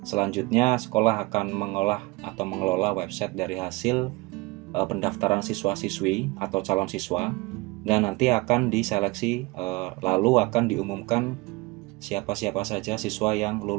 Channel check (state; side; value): quieter; left; 23.4 dB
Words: Selanjutnya sekolah akan mengolah atau mengelola website dari hasil pendaftaran siswa-siswi atau calon siswa dan nanti akan diseleksi lalu akan diumumkan siapa-siapa saja siswa yang